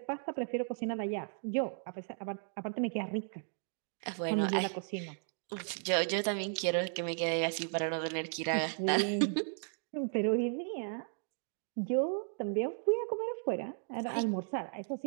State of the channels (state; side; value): silent; left; 54 dB below the other